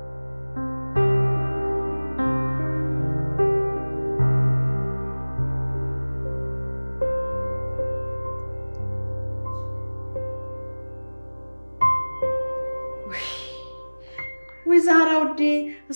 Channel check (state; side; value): inverted; both; correlation -1.00